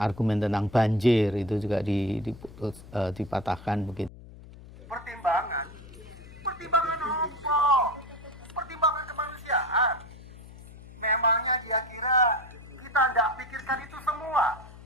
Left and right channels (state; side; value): noise; left; hum, 18 dB below the sound